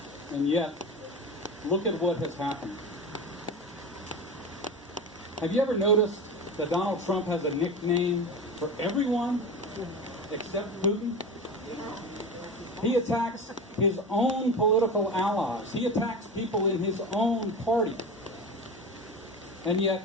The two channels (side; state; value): both; normal; correlation 0.27